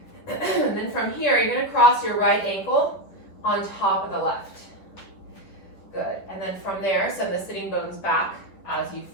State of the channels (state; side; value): late; right; 10 ms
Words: And then from here, you're gonna cross your right ankle on top of the left. Good, and then from there, send the sitting bones back as you